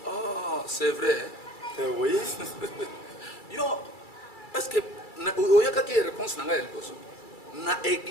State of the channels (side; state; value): right; late; 2.3 ms